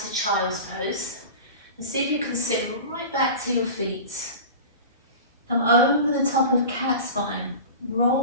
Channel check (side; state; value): both; inverted; correlation -0.34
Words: child's pose, and see if you can sit right back to your feet. Come over the top of cat spine,